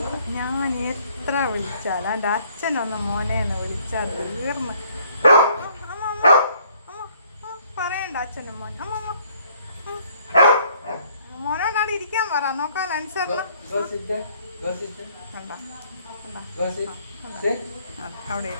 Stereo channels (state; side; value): inverted; both; correlation -0.63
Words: ഞാൻ എത്ര വിളിച്ചാൽ എൻ്റെ അച്ഛനൊന്ന് മോനെന്ന് വിളിച്ചാൽ തീർന്ന്. പറയണ്ട അച്ഛനും മോൻ. മോനോടാണ് ഇരിക്കാൻ പറ. നോക്കാൻ അനുസരണം കണ്ട അവിടെ